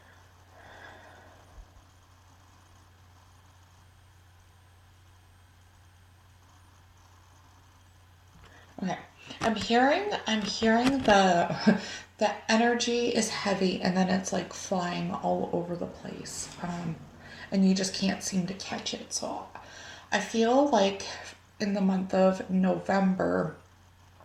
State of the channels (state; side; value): identical; both; correlation 1.00